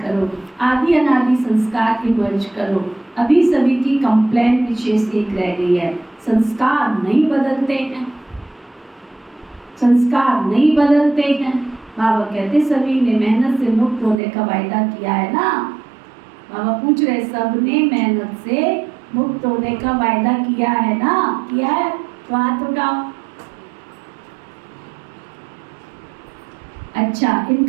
करो। आदि अनादि संस्कार इमर्ज करो। अभी सभी की कंप्लेंट विशेष एक रह गई है, संस्कार नहीं बदलते हैं, संस्कार नहीं बदलते हैं। बाबा कहते सभी ने मेहनत से मुक्त होने का वायदा किया है ना। बाबा पूछ रहे सबने मेहनत से मुक्त होने का वायदा किया है ना, किया है तो हाथ उठाओ। अच्छा,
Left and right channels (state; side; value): drops out; left; at 14.2 s